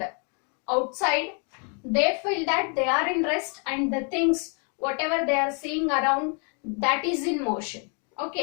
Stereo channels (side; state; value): right; quieter; 38.5 dB